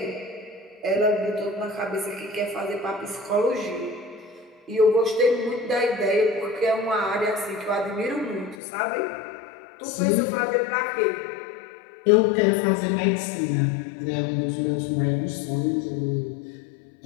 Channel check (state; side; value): drops out; right; at 8.6 s